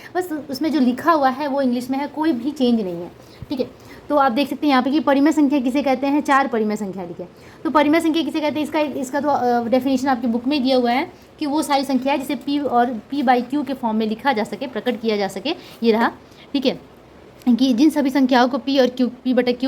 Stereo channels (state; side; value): identical; both; correlation 1.00